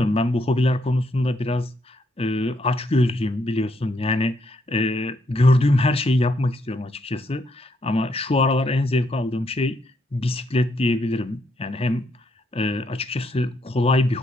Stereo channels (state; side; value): normal; both; correlation 0.75